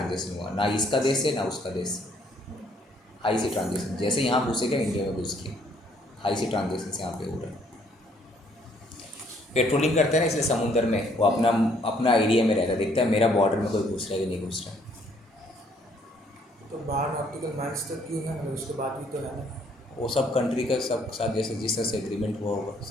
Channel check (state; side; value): normal; both; correlation 0.65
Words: हुआ, ना इसका देश है ना उसका देश, हाई सी ट्रांजेक्शन, जैसे यहाँ घुसेगा इंडिया में घुस के हाई सी ट्रांजेक्शन से यहाँ पे हो रहा है। पेट्रोलिंग करते हैं ना, इसलिए समुद्र में वो अपना एरिया में रहता है, देखता है मेरा बॉर्डर में कोई घुस रहा है कि नहीं घुस रहा है। तो 12 नॉटिकल माइल्स तक क्यों है, मतलब उसके बाद भी तो है ना, वो सब कंट्री का सब साथ जैसे जिस तरह से एग्रीमेंट हुआ होगा